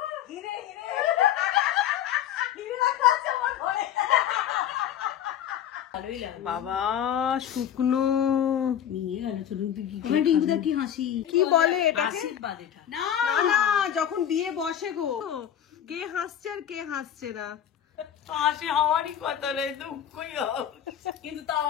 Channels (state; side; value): quieter; right; 10.0 dB